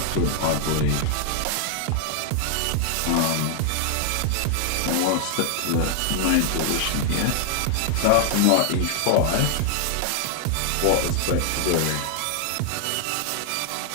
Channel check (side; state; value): both; different; correlation 0.00